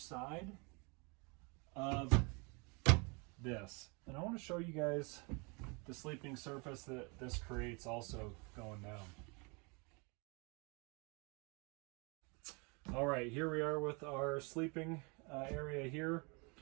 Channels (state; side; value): quieter; left; 30.9 dB